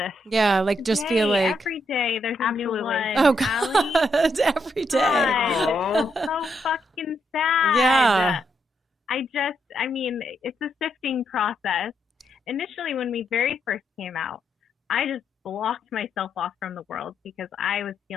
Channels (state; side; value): normal; both; correlation 0.78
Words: Yeah, like just feel like every day there's a new one. Oh God, every day. God. So fucking sad. Yeah. I mean, it's a sifting process. Initially, when we very first came out, I just blocked myself off from the world because I was